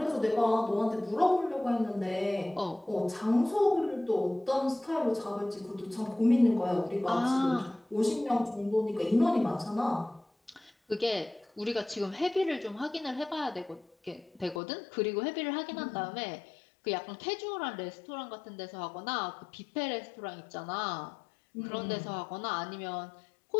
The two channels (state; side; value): drops out; right; at 14.6 s